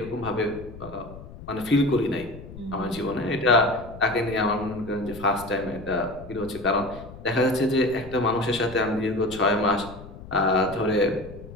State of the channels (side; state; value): left; noise; rumble, 15 dB below the sound